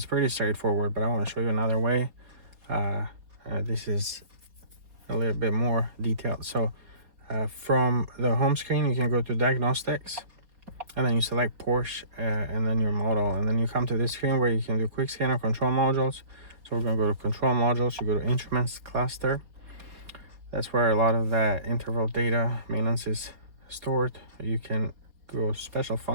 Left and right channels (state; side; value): late; left; 4.2 ms